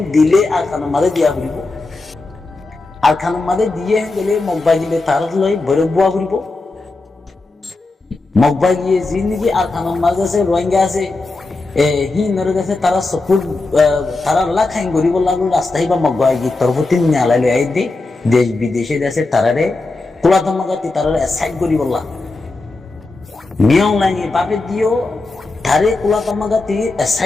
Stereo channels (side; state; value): right; quieter; 3.3 dB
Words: দিলে আর খানের মাঝে দিয়া ঘুরিব আর খানের মাঝে দিয়ে গেলে মগবা দিলে তার লই ভৈরব বুয়া ঘুরিব মগবা গিয়ে যি নাকি আর খানের মাঝে আছে রোহিঙ্গা আছে হিন্দুর কাছে তারা সপুর তারা লাখাইন গরিব লাগলো রাস্তায় বা মগবা গিয়ে তরফতি নালাই লই আই দে দেশ বিদেশে দেশে তারারে কুলাতমাগাতি তারারে সাইড গরিব লা মিয়াও লাইনে বাপে দিও তারে কুলাতমাগাতি